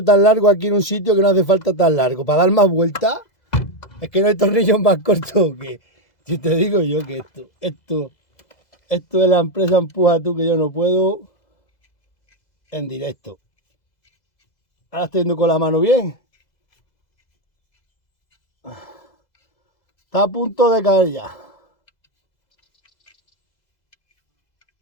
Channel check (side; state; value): right; late; 2.0 ms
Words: tan largo aquí en un sitio que no hace falta tan largo? ¿Para dar más vueltas? Es que no hay tornillos más cortos que... Si te digo yo que esto de la empresa Empuja Tú, que yo no puedo en directo. Ahora estoy yendo con la mano bien. Está a punto de caer ya.